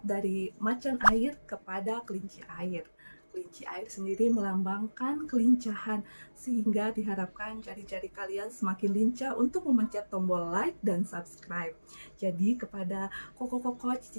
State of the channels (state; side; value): inverted; both; correlation -1.00